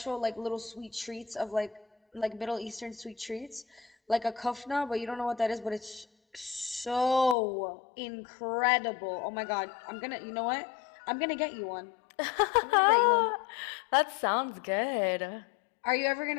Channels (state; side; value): drops out; right; at 7.4 s